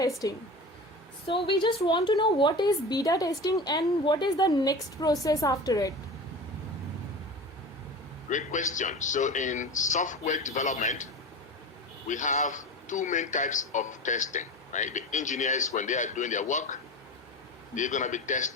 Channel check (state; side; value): normal; both; correlation 0.31